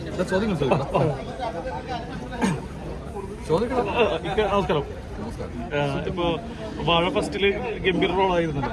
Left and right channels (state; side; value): identical; both; correlation 1.00